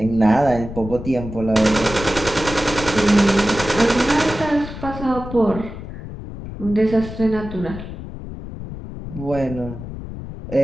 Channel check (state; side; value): noise; left; rumble, 10 dB below the sound